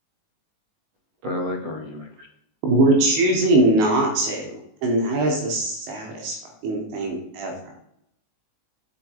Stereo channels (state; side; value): late; left; 19 ms